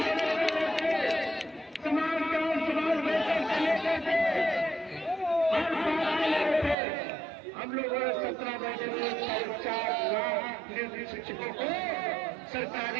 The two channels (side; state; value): left; drops out; at 6.8 s